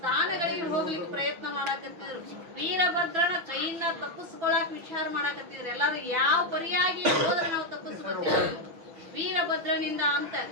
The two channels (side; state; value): left; late; 6.0 ms